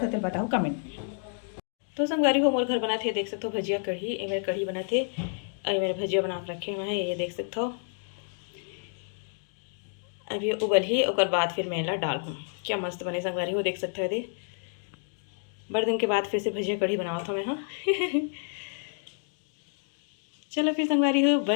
तो बताओ कमेंट में। तो संगवारी हो मोर घर बना थे देख सकते हो भजिया कढ़ी ये मेरे कढ़ी बना थे और मेरे भजिया बना के रखे हुए हैं ये देख सकते हो। अभी उबल ही और बाद फिर मेला डाल हूँ क्या मस्त बने संगवारी हो देख सकते हो। दे बड़े दिन के बाद फिर से भजिया कढ़ी बनावा था मैं हाँ। चलो फिर संगवारी हो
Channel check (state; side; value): silent; right; 58 dB below the other